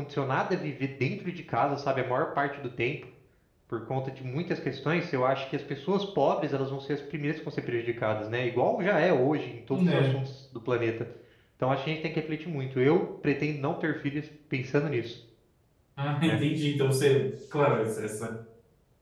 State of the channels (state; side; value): identical; both; correlation 1.00